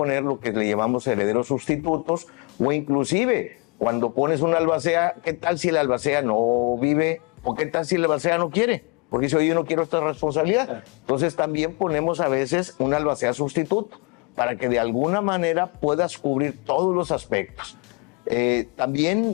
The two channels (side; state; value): right; quieter; 31.2 dB